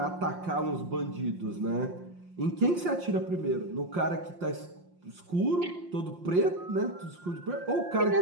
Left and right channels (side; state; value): left; late; 5.7 ms